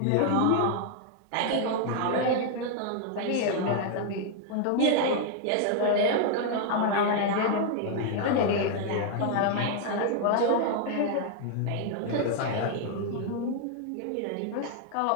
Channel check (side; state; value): both; different; correlation 0.00